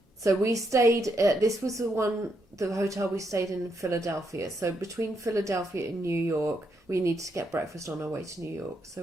So we stayed, this was the hotel we stayed in Philadelphia. So between Philadelphia and New York, we needed to get breakfast on our way to New York. So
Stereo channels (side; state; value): both; normal; correlation 0.79